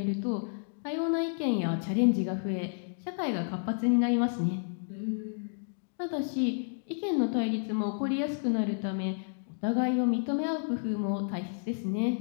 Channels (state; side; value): silent; right; digital silence